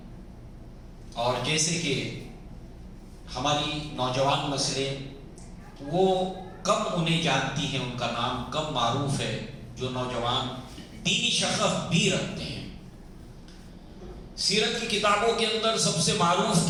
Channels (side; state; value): both; identical; correlation 1.00